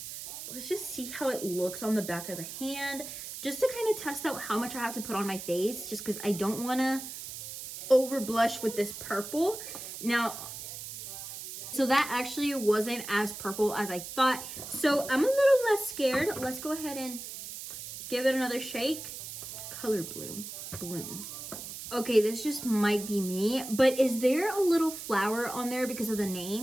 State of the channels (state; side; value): noise; right; hiss, 9 dB below the sound